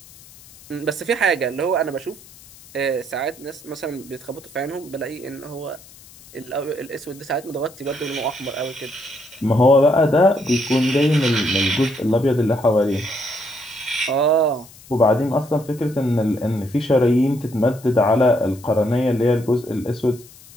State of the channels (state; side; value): noise; left; hiss, 22 dB below the sound